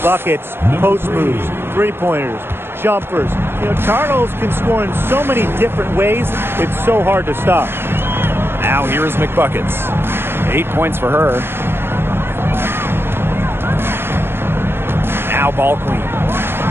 post moves, three-pointers, jumpers. You know, Charles can score in so many different ways, it's so hard to stop. Now here is McBuckets. 8 points for her. Now ball queen.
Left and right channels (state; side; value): late; left; 0.11 ms